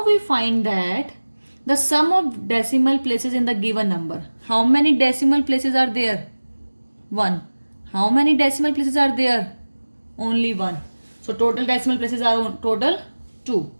we find that the sum of decimal places in the given number. How many decimal places are there? 1. How many decimal places are there? Only 1. So total decimal places are total 2.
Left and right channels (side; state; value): both; inverted; correlation -1.00